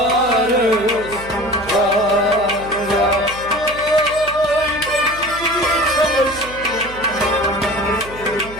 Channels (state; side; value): noise; right; hum, 16 dB below the sound